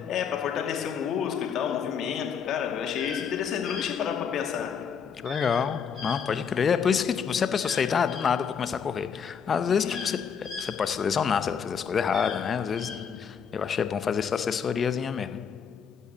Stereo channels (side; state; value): right; quieter; 6.9 dB